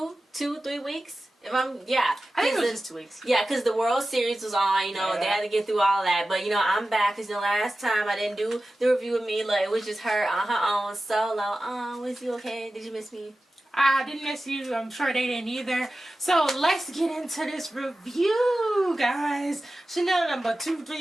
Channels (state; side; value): normal; both; correlation 0.95